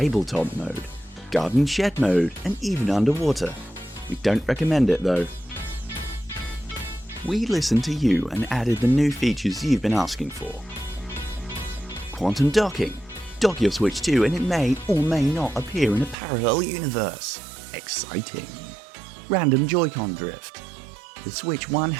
mode, garden shed mode, and even underwater. We don't recommend it though. We listened to you and added the new features you've been asking for. Quantum docking. Dock your Switch 2 and it may or may not appear in a parallel universe. Exciting. Random Joy-Con drift. The Switch 1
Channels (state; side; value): drops out; left; at 16.2 s